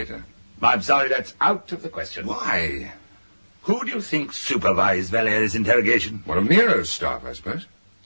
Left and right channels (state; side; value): inverted; both; correlation -1.00